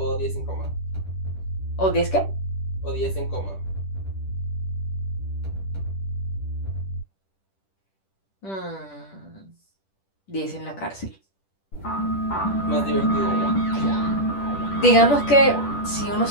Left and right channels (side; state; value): right; late; 10 ms